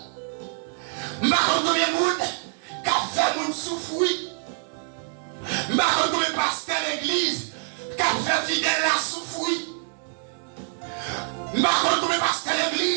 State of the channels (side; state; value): left; silent; digital silence